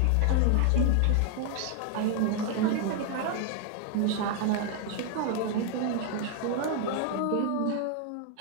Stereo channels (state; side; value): different; both; correlation 0.00